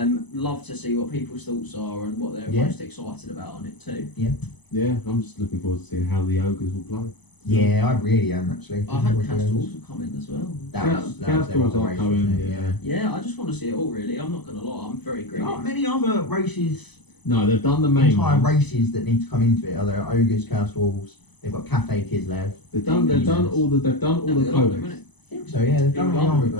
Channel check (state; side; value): late; right; 0.99 ms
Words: Love to see what people's thoughts are and what they're most excited about on it too. Yeah, I'm just looking forward to seeing how the ogres will play. Yeah, I really am actually. I hope Castor's will come in as well. Castor's are coming. Yeah, I just want to see it all really. I'm not going to lie, I'm very greedy. There aren't many other races. No, they've done the main entire ones. races that need to come into it. Are there ogres, Chaos Wolves? They've got Cafe Kislev. They've done all the codex. I think so. Yeah, they've done all the army